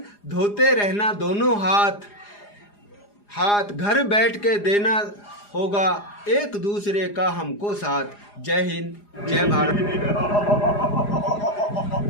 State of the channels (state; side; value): late; right; 4.9 ms